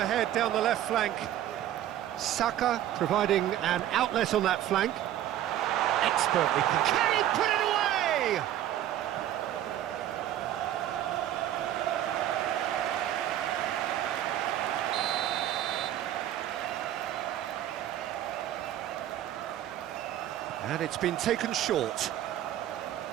down the left flank. Saka providing an outlet on that flank. Expertly. Can he put it away? And it's been taken short.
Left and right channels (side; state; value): left; quieter; 12.1 dB